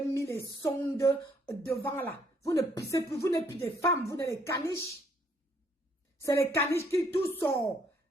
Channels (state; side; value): normal; both; correlation 0.67